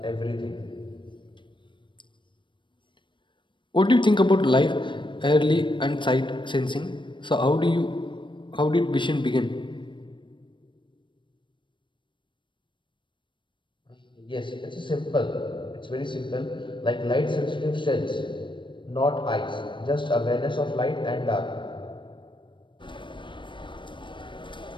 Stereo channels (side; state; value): right; late; 0.23 ms